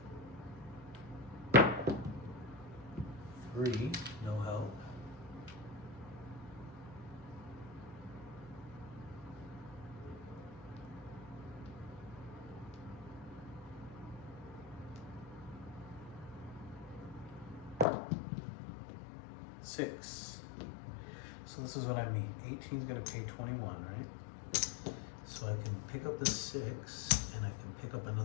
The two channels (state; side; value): drops out; right; at 17.9 s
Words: $3, no help. $6. So this is what I mean. 18 is going to pay 21, right? So I can pick up the 6 and I can pick up